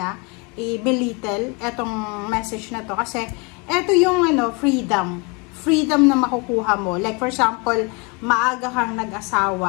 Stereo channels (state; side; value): quieter; right; 30.3 dB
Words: i-belittle etong message na to, kasi eto yung freedom na makukuha mo. Like for example, maaga kang